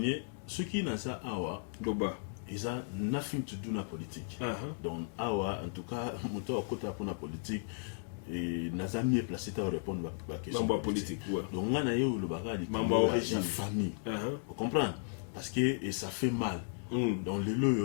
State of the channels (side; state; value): right; silent; digital silence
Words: ce qui n'a ça awa doba ils ont nothing to do na politique. Donc awa en tout cas moto akota pour na politique et n'a mieux placé à répondre à la question politique. Donc on a eu le bagage de la famille. Vous comprenez? Parce que et ça fait mal. Donc les